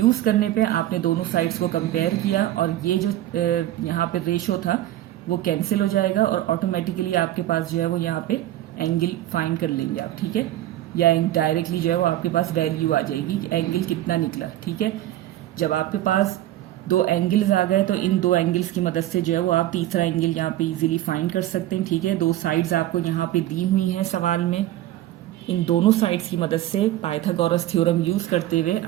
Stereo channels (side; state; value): left; quieter; 14.0 dB